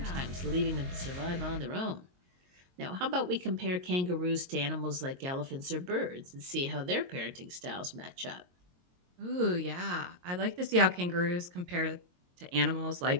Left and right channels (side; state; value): left; late; 22 ms